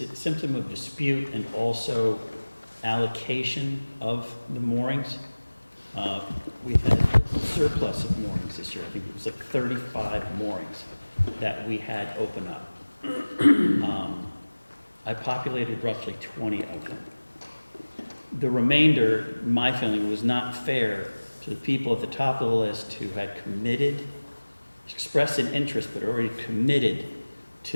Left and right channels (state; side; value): inverted; both; correlation -1.00